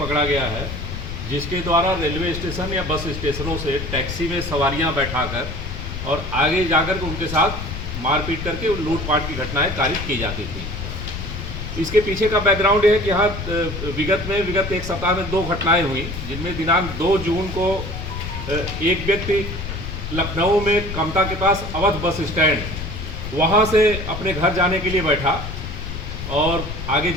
गया है जिसके द्वारा रेलवे स्टेशन या बस स्टेशनों से टैक्सी में सवारियां बैठाकर और आगे जाकर के उनके साथ मारपीट करके लूटपाट की घटनाएं कारित की जाती थी। इसके पीछे का बैकग्राउंड है कि यहाँ विगत एक सप्ताह में 2 घटनाएं हुई, जिनमें दिनांक 2 जून को एक व्यक्ति लखनऊ में कमता के पास अवध बस स्टैंड वहाँ से अपने घर जाने के लिए बैठा और आगे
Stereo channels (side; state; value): left; noise; rumble, 7 dB below the sound